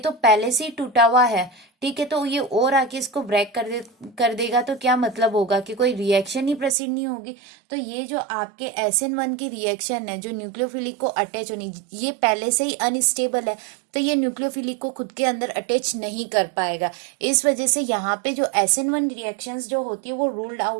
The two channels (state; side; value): drops out; left; at 6.8 s